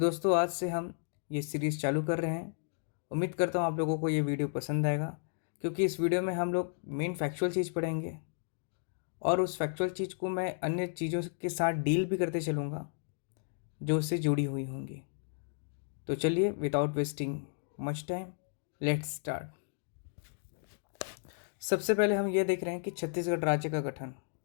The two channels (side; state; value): right; silent; digital silence